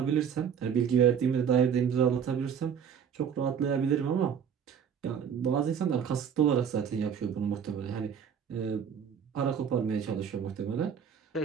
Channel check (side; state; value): left; quieter; 7.7 dB